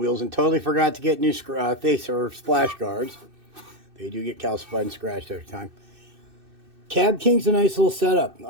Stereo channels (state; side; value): late; left; 2.6 ms